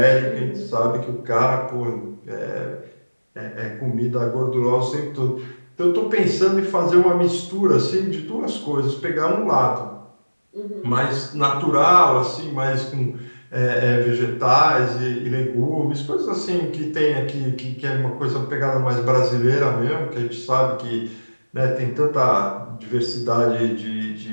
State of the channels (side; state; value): both; inverted; correlation -1.00